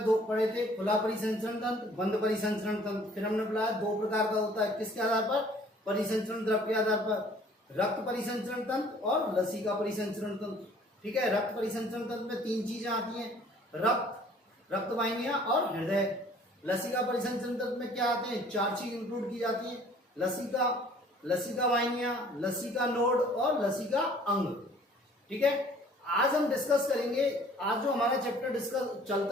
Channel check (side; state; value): both; normal; correlation 0.54